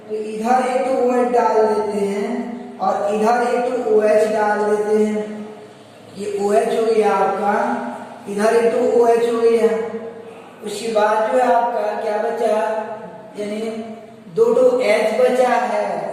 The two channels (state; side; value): identical; both; correlation 1.00